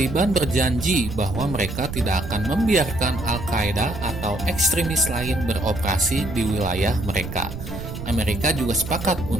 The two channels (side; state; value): right; noise; rumble, 9 dB below the sound